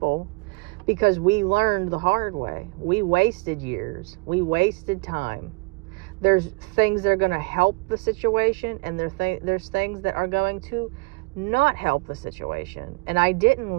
because we learned the hard way. We wasted years. We wasted time. There's things that are going to help the situation, and there's things that are going to not help the situation. And I didn't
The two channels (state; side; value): quieter; left; 28.9 dB